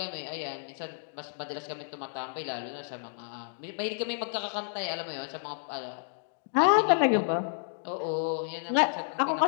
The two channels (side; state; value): right; silent; digital silence